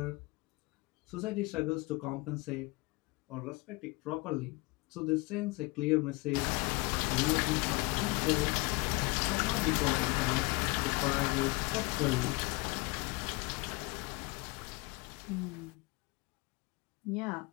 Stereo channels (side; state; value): right; quieter; 25.5 dB